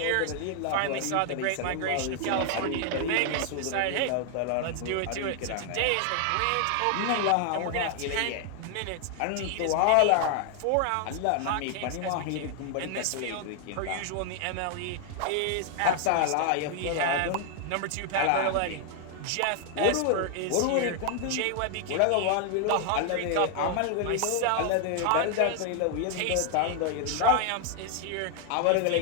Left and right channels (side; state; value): both; different; correlation 0.00